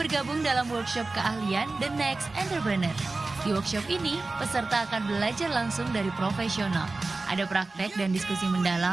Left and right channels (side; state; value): left; quieter; 3.4 dB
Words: dalam workshop keahlian The Next Entrepreneur. Di workshop ini, peserta akan belajar langsung dari profesional. Ada praktek dan diskusi